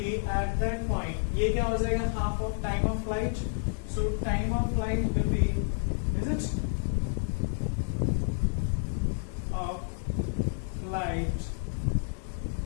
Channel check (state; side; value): silent; right; digital silence